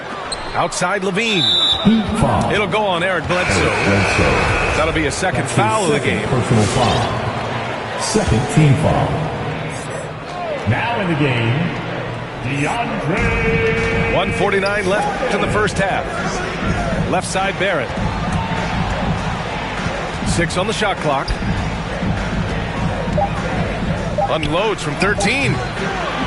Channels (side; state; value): both; identical; correlation 1.00